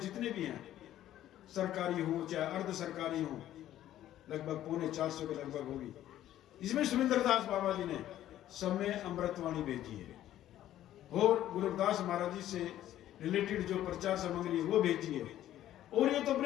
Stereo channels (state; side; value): quieter; right; 12.7 dB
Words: भी हैं, सरकारी हो चाहे अर्ध सरकारी हो, लगभग 450 के लगभग होगी, इसमें सुरेंद्र दास बाबा जी ने सब में अमृतवाणी भेजी है और गुरु रविदास महाराज जी से रिलेटेड जो प्रचार सामग्री है वो भेजी है। और ये तो